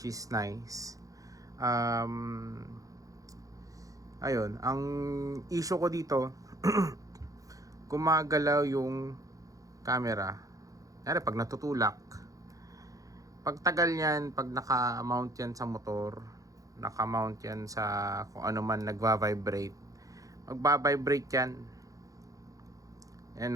is nice. Ayun, ang issue ko dito, gumagalaw yung camera. Kaya pag natutulak, pag tagal yan, pag naka-mount yan sa motor, naka-mount yan sa kung ano man nagva-vibrate, magba-vibrate yan.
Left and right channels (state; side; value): late; left; 0.17 ms